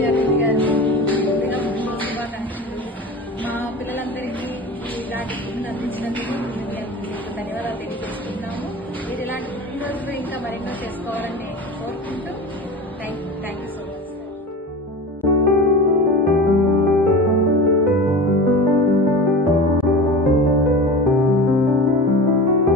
మా పిల్లలందరికీ ఇలాంటి పుట్టిన అందించినందుకు ధన్యవాదాలు తెలియజేస్తున్నాము. మీరు ఇలాంటి పుట్టినరోజులు ఇంకా మరెన్నో చేసుకోవాలని కోరుకుంటూ థ్యాంక్ యూ సో మచ్.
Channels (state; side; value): normal; both; correlation 0.31